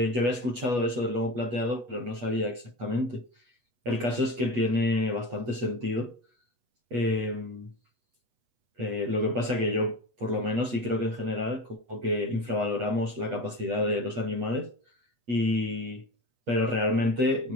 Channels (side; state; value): left; late; 8.3 ms